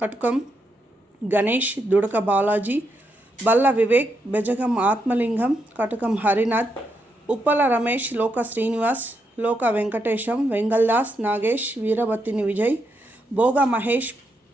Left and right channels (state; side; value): normal; both; correlation 0.81